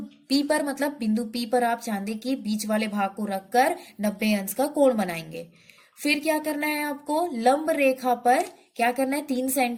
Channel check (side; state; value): both; identical; correlation 1.00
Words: P पर, मतलब बिंदु P पर आप चांदी की बीच वाले भाग को रखकर 90 अंश का कोण बनाएंगे। फिर क्या करना है आपको, लंब रेखा पर क्या करना है, 3